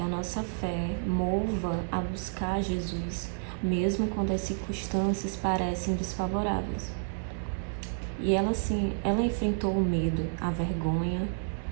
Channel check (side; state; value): left; silent; 58 dB below the other